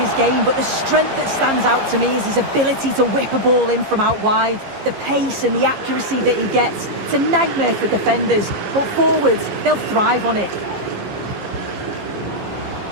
game, but the strength that stands out to me is his ability to whip a ball in from out wide. The pace and the accuracy that he gets. It's a nightmare for defenders, but forwards, they'll thrive on it.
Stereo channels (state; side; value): late; left; 15 ms